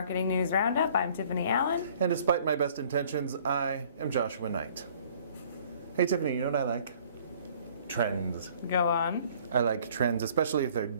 News Roundup. I'm Tiffani Allen. And despite my best intentions, I am Joshua Nite. Hey Tiffani, you know what I like? Trends. Go on. I like trends, especially if they're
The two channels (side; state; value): both; inverted; correlation -0.56